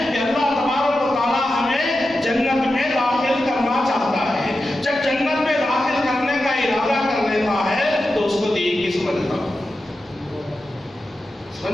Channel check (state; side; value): normal; both; correlation 0.91